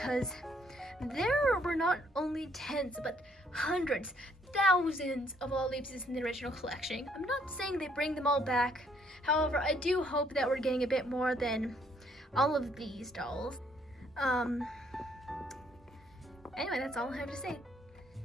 there were not only tens, but hundreds, thousands of Lalaloopsies in the original collection. I'm not saying they bring them all back. However, I do hope that we're getting a bit more than all of these dolls. Anyway, that's all I have to say.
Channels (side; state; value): both; normal; correlation 0.67